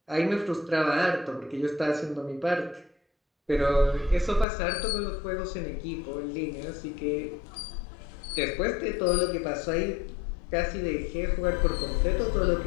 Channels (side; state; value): right; drops out; at 4.5 s